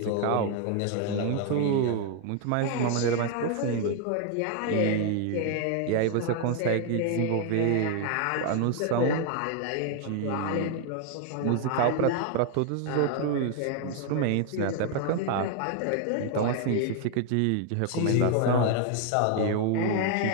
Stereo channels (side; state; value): both; different; correlation 0.00